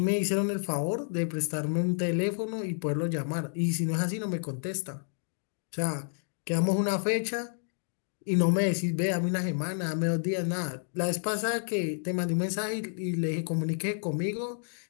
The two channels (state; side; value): silent; right; digital silence